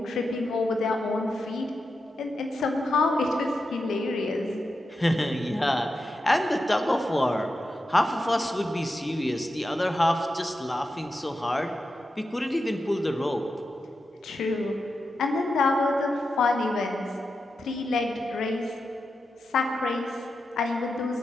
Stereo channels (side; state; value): both; normal; correlation 0.88